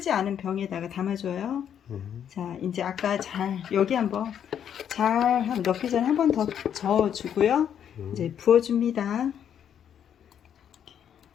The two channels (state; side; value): quieter; right; 9.0 dB